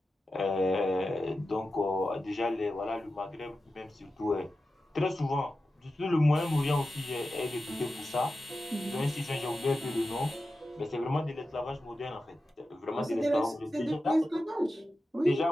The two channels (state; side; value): normal; both; correlation 0.92